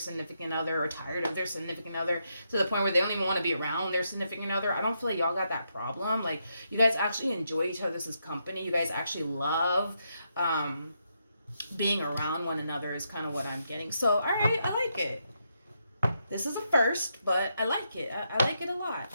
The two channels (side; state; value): both; inverted; correlation -0.81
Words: other or tired of their significant other to the point where they don't even want to be around their significant other. I don't feel like y'all got that problem. Like you guys actually enjoy each other's company. You guys actually love being around one another is kind of what I'm getting. So all right, I like it. This is a first, but I like it. I like it a